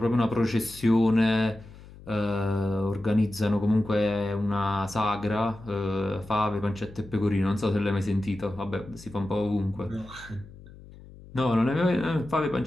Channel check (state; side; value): noise; left; hum, 19 dB below the sound